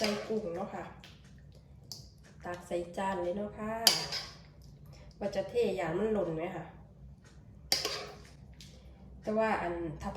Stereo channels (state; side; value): identical; both; correlation 1.00